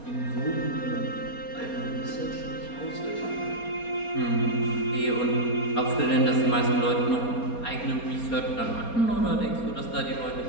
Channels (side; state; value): right; late; 4.3 ms